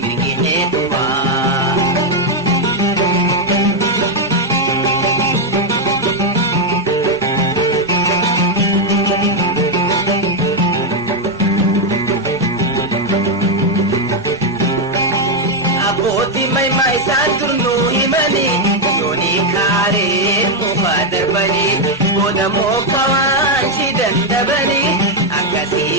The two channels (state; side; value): normal; both; correlation 0.02